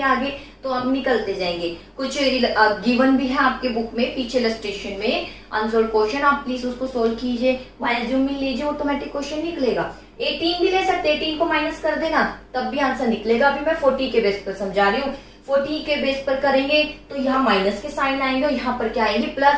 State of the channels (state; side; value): identical; both; correlation 1.00